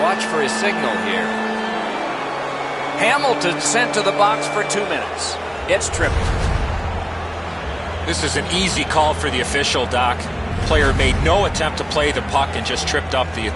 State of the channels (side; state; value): both; identical; correlation 1.00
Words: Watch for his signal here. Hamilton sent to the box for 2 minutes. It's tripping. This is an easy call for the official, Doc. Player made no attempt to play the puck and just tripped up the